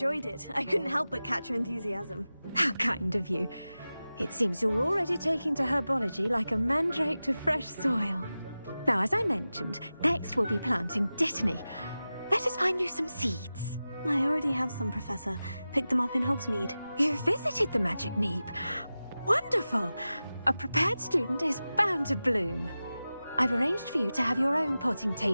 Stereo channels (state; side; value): inverted; both; correlation -0.95